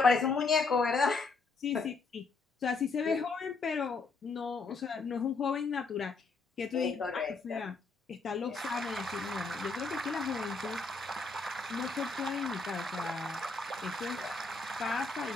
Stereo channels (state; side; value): quieter; right; 4.0 dB